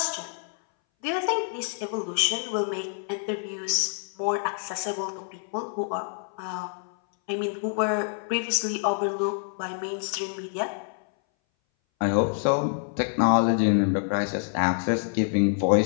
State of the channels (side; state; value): right; silent; 59 dB below the other